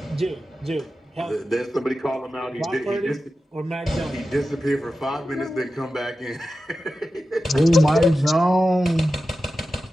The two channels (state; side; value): normal; both; correlation 0.92